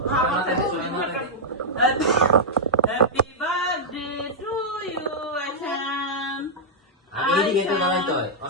happy birthday to you Ayesha এদিকে তো দাঁড়াইতে হয়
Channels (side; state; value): both; normal; correlation -0.08